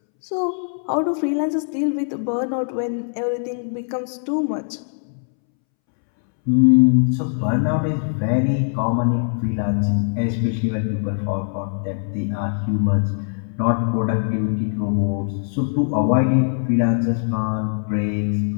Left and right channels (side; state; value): right; silent; 65 dB below the other